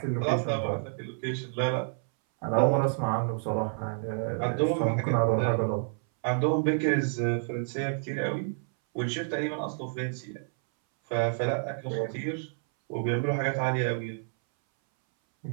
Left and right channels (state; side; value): silent; left; 59 dB below the other